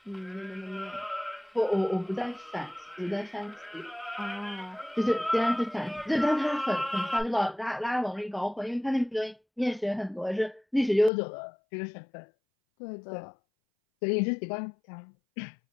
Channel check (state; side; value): drops out; right; at 11.1 s